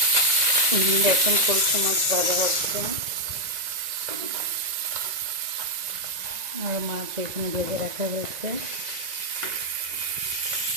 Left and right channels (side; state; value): left; late; 1.9 ms